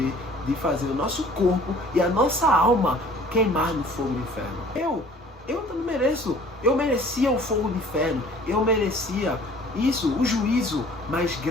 de fazer o nosso corpo e a nossa alma queimar no fogo do inferno. Eu também mereço. Eu merecia o fogo do inferno. Eu merecia isso, o juízo. Mas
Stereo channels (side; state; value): both; normal; correlation 0.51